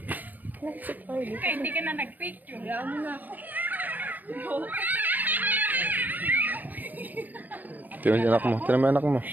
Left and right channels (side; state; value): left; late; 0.087 ms